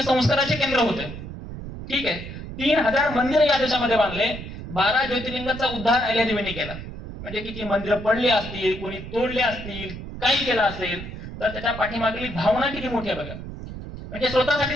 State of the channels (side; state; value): right; noise; rumble, 10 dB below the sound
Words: संस्काराचे केंद्र होते. ठीक आहे, 3000 मंदिर या देशामध्ये बांधले. 12 ज्योतिर्लिंगाचा उद्धार अहिल्यादेवींनी केला. म्हणजे किती मंदिरं पडली असतील, कोणी तोडले असतील, काही केलं असेल, तर त्याच्या पाठीमागली भावना किती मोठी आहे बघा. म्हणजे स्वतःसाठी